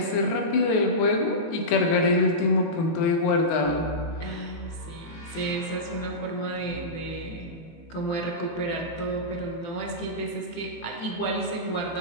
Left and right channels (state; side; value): late; right; 18 ms